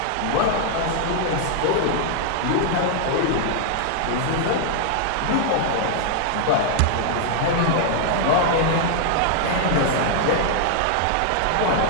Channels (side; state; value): both; different; correlation 0.00